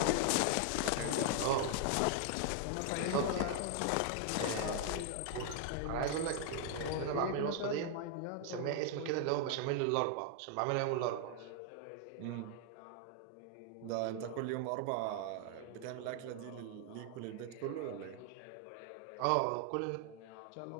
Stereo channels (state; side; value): different; both; correlation 0.00